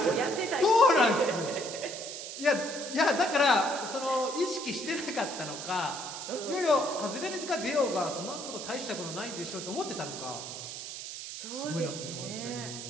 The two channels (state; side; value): noise; right; hiss, 8 dB below the sound